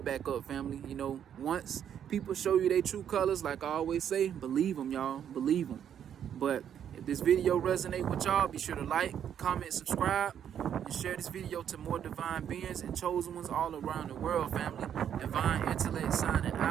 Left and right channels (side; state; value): left; quieter; 9.2 dB